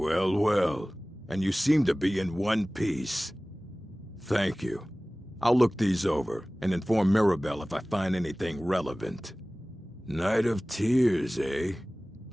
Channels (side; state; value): both; normal; correlation 0.98